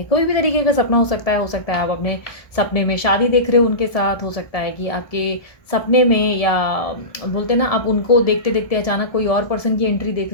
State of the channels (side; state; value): right; late; 1.7 ms